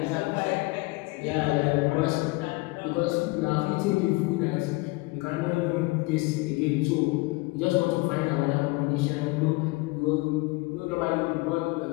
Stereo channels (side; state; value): right; quieter; 24.3 dB